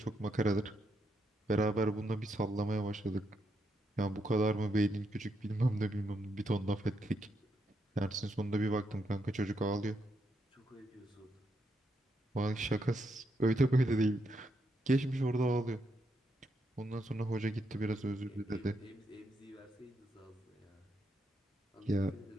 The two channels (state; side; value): normal; both; correlation 0.80